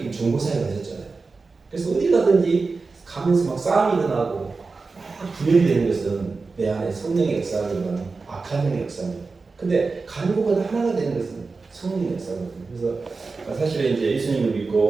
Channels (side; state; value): left; quieter; 4.1 dB